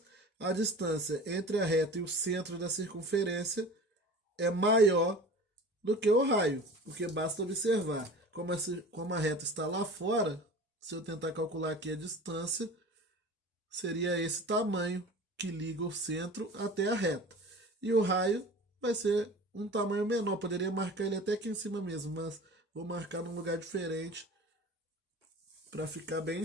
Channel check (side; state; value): both; normal; correlation 0.39